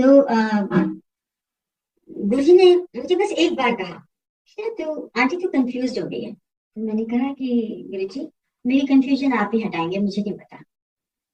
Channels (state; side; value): identical; both; correlation 1.00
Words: गुरुजी ने मुझे बस एक बार कहा, तो आंटी तो कंफ्यूज हो गई है। तो मैंने कहा कि गुरुजी मेरी कंफ्यूजन आप ही हटाएंगे, मुझे नहीं पता।